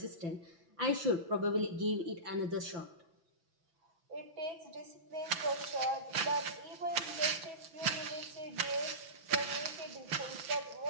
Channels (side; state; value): left; late; 6.0 ms